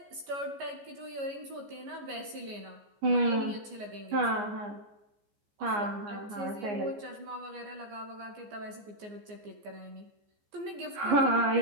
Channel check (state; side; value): late; left; 14 ms